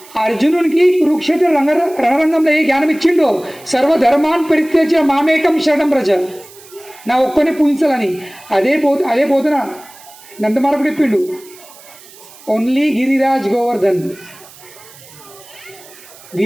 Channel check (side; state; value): right; noise; hiss, 22 dB below the sound